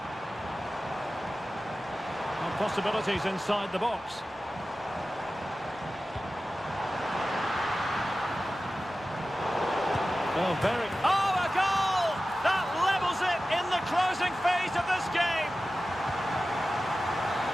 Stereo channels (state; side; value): normal; both; correlation 0.95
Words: And possibilities inside the box. Oh, very... Oh, a goal! That levels it in the closing phase of this game.